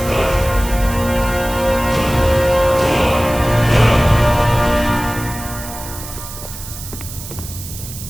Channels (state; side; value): noise; right; hiss, 12 dB below the sound